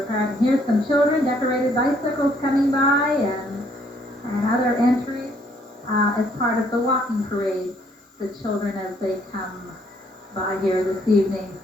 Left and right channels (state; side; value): normal; both; correlation 0.66